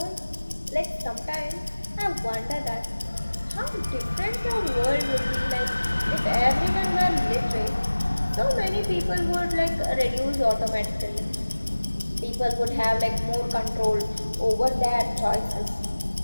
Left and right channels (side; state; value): both; inverted; correlation -1.00